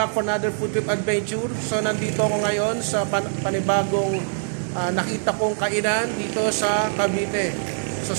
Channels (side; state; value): left; silent; digital silence